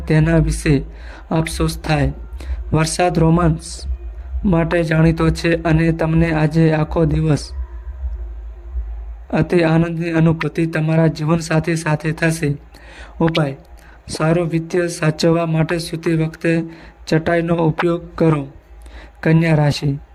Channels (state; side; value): identical; both; correlation 1.00